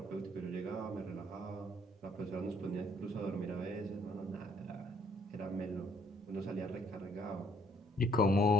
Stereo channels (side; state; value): both; normal; correlation 0.65